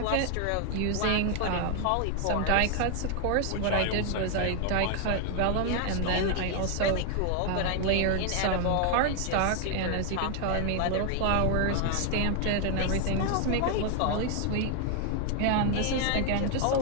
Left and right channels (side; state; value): both; different; correlation 0.00